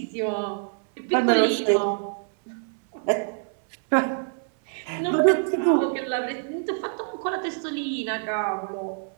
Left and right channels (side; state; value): left; silent; 61 dB below the other